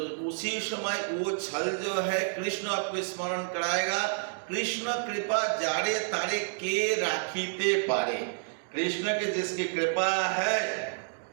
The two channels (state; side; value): silent; left; digital silence